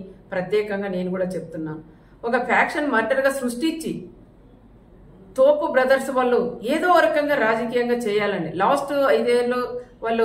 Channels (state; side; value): identical; both; correlation 1.00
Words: ప్రత్యేకంగా నేను కూడా చెప్తున్నాను. ఒక ఫ్యాక్షన్ మర్డర్గా సృష్టించి తోపు బ్రదర్స్ వాళ్ళు ఏదో రకంగా రాజకీయంగా చేయాలండి. లాస్ట్ 5 ఏళ్ళు వాళ్ళు